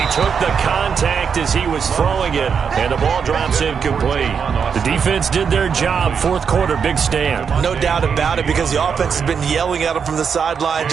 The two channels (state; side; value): quieter; left; 6.6 dB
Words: took the contact as he was throwing it, and the ball drops incomplete. The defense did their job. Fourth quarter, big stand. No doubt about it, because the offense has been yelling at him from the sideline.